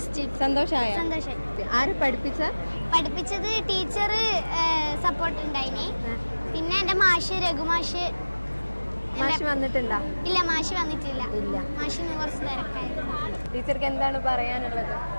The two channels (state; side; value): inverted; both; correlation -1.00